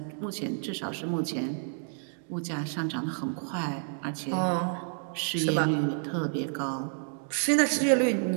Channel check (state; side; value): silent; left; 58 dB below the other